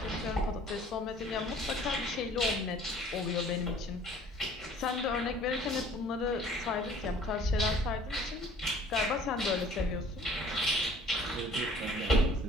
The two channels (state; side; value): normal; both; correlation 0.52